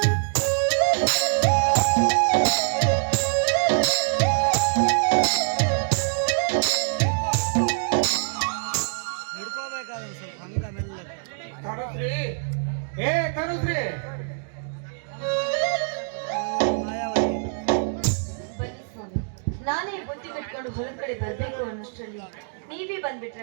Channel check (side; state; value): left; silent; digital silence